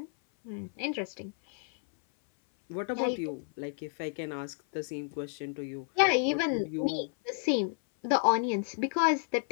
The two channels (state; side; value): silent; right; 57 dB below the other